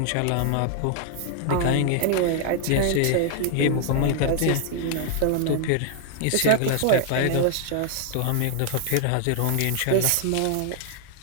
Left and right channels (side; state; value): both; different; correlation 0.00